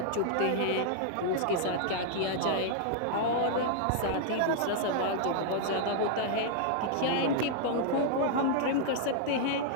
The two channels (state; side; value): different; both; correlation -0.01